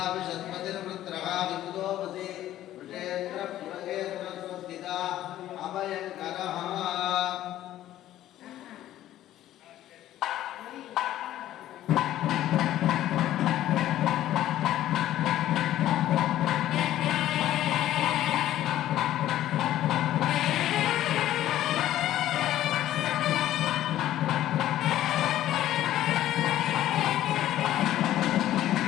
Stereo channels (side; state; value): right; quieter; 13.2 dB